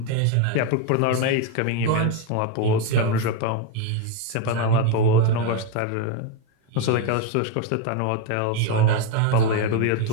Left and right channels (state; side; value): different; both; correlation 0.02